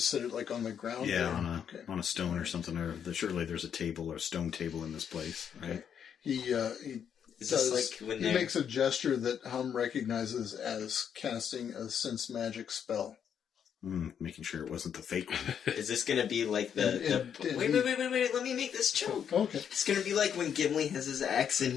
sit it, like on the ground? Yeah, there? on a stone or something. Or surely there's a table or a stone table in this place, right? Okay. He Is this like when he they're... makes a gesture that Hum recognizes as casting a sense magic spell. Making sure it wasn't the fake one. Is this gonna be like the... And Wait, let me make this joke. Okay. It's gonna be like when Gimli has his axe and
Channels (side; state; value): right; quieter; 8.2 dB